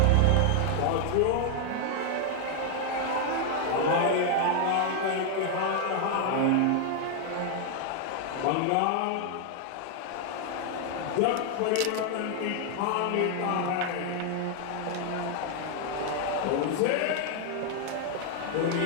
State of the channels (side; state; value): both; different; correlation 0.00